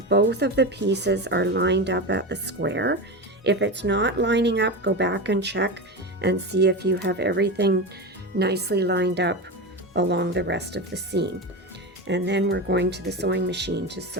both of the pieces are lined up at the square. If it's not lining up, go back and check and see if you have everything nicely lined up along the rest of the seam. And then we're going to the sewing machine to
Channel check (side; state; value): both; normal; correlation 0.21